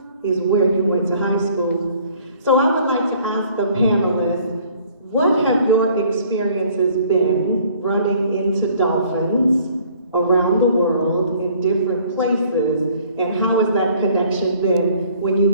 is where you went to high school. So I would like to ask the panelists, what have your experiences been running into dolphins around the world in different places, and how has that connection been when you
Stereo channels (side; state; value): both; inverted; correlation -0.57